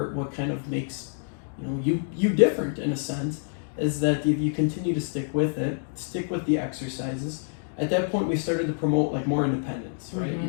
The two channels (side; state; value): right; silent; digital silence